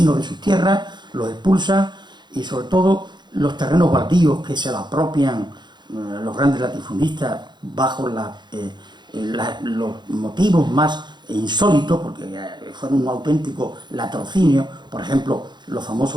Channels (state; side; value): late; left; 0.21 ms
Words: de sus tierras, los expulsa, y sobre todo los terrenos baldíos que se lo apropian los grandes latifundistas bajo los motivos más insólitos, porque fueron un auténtico latrocinio. Por ejemplo, los